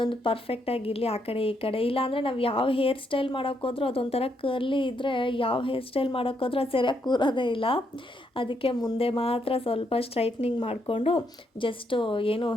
ಪರ್ಫೆಕ್ಟಾಗಿರಲಿ ಆ ಕಡೆ ಈ ಕಡೆ. ಇಲ್ಲಾಂದರೆ ನಾವು ಯಾವ ಹೇರ್ ಸ್ಟೈಲ್ ಮಾಡೋಕ್ಕೋದ್ರೂ ಅದೊಂಥರ ಕರ್ಲಿ ಇದ್ದರೆ ಯಾವ ಹೇರ್ ಸ್ಟೈಲ್ ಮಾಡೋಕ್ಕೋದ್ರೂ ಅದು ಸರಿಯಾಗಿ ಕೂರೋದೇ ಇಲ್ಲ. ಅದಕ್ಕೆ ಮುಂದೆ ಮಾತ್ರ ಸ್ವಲ್ಪ ಸ್ಟ್ರೈಟ್ನಿಂಗ್ ಮಾಡಿಕೊಂಡು, ಜಸ್ಟು ಏನು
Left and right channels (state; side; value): normal; both; correlation 0.77